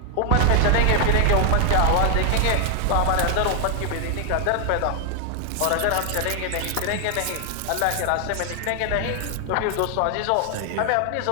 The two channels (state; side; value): different; both; correlation 0.00